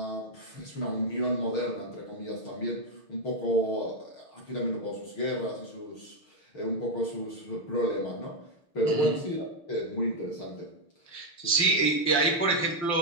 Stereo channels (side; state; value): right; late; 6.4 ms